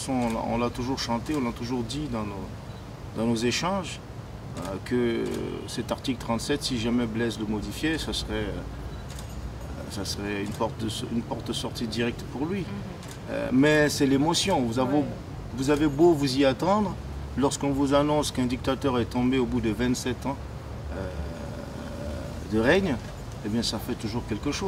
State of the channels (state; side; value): identical; both; correlation 1.00